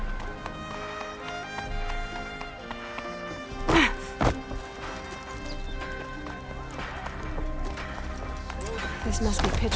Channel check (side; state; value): both; identical; correlation 1.00